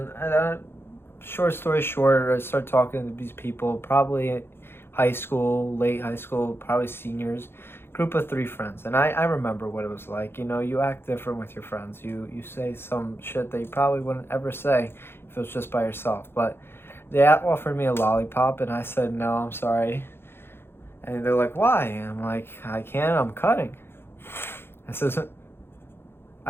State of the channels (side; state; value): right; late; 0.11 ms